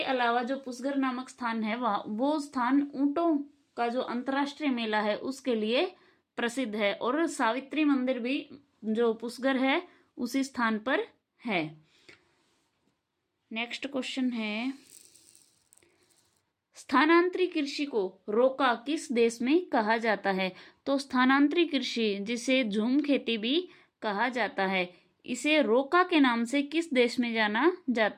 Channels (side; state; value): both; identical; correlation 1.00